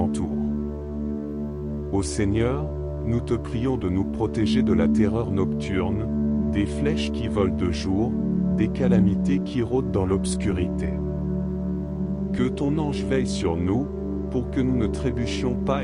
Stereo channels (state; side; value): identical; both; correlation 1.00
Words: Ô Seigneur, nous te prions de nous protéger de la terreur nocturne, des flèches qui volent de jour, des calamités qui rôdent dans l'obscurité. Que ton ange veille sur nous, pour que nous ne trébuchions